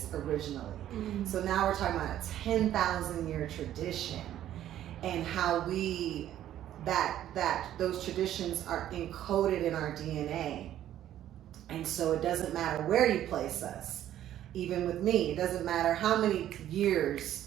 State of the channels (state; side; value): quieter; left; 12.0 dB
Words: originally. So now we're talking about a 10,000 year tradition, and how that those traditions are encoded in our DNA. And so it doesn't matter where you place us. Even with me, it doesn't matter how many